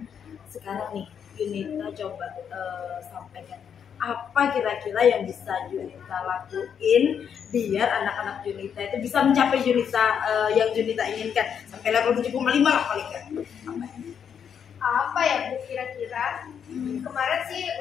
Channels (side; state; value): right; quieter; 7.8 dB